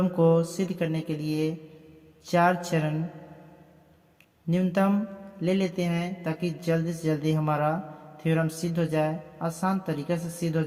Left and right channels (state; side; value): identical; both; correlation 1.00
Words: को सिद्ध करने के लिए 4 चरण न्यूनतम ले लेते हैं ताकि जल्दी से जल्दी हमारा थ्योरम सिद्ध हो जाए, आसान तरीके से सिद्ध हो